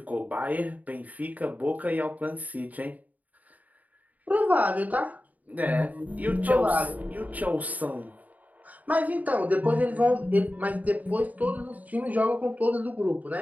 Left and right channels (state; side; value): late; left; 0.075 ms